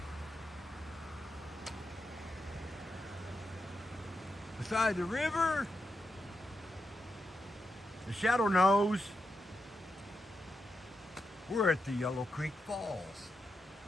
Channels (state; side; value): normal; both; correlation 0.86